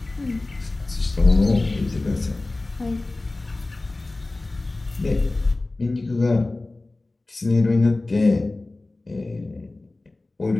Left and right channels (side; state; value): right; quieter; 3.0 dB